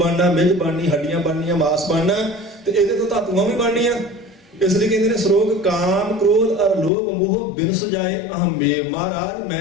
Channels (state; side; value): drops out; right; at 6.9 s